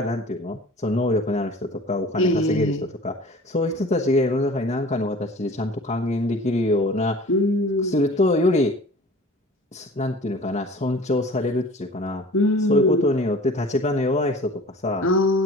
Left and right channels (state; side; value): normal; both; correlation 0.44